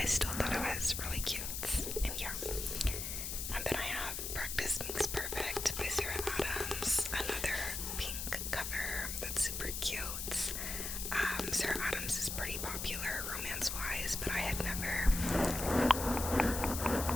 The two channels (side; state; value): left; noise; hiss, 4 dB below the sound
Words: still thought it was really cute. And yeah. And then I have Practice Makes Perfect by Sarah Adams, another pink cover that's super cute. Sarah Adams is pretty popular romance-wise, but I had never...